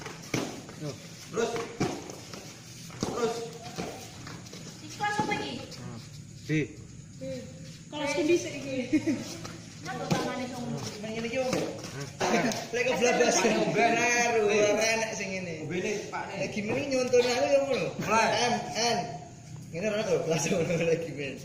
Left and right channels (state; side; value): identical; both; correlation 1.00